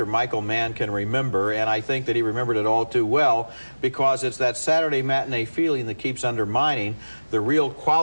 Michael Mann can remember, and I think that he remembered it all too well, because it's that Saturday matinee feeling that keeps undermining the real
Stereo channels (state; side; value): inverted; both; correlation -1.00